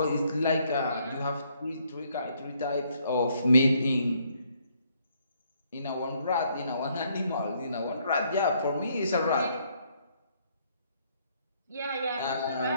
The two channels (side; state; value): both; inverted; correlation -0.69